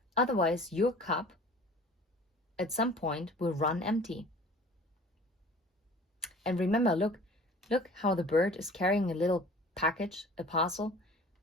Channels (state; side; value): normal; both; correlation 0.46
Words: otherwise your cup at some point will run empty. And remember, look how the bird is carrying a little package, a parcel,